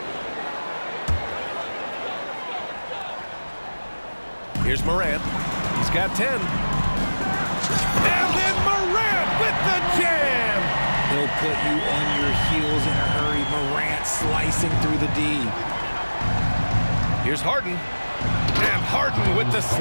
Here's Morant. He's got 10. And then Morant with the jam. He'll put you on your heels in a hurry. Morant slicing through the D. Here's Harden. And Harden with the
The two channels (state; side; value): inverted; both; correlation -1.00